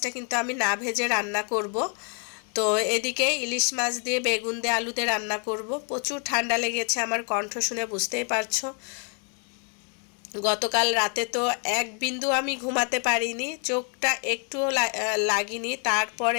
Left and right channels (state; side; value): quieter; right; 39.4 dB